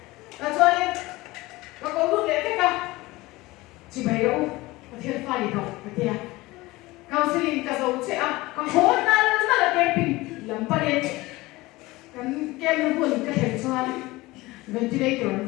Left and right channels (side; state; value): right; quieter; 20.3 dB